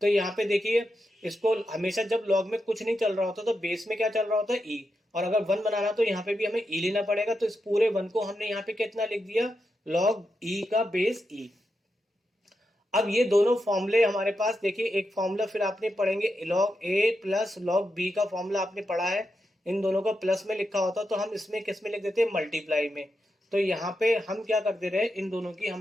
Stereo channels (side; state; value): both; normal; correlation 0.86